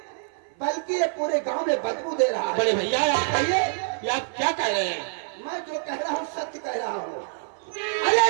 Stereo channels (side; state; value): left; silent; 57 dB below the other